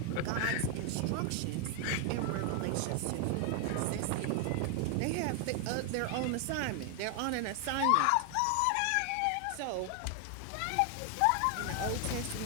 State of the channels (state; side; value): different; both; correlation 0.00